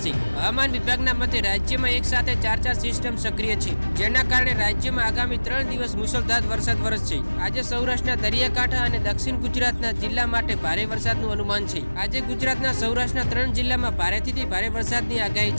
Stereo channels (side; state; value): both; inverted; correlation -1.00